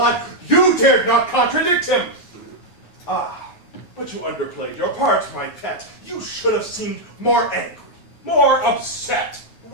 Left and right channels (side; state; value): right; late; 9.4 ms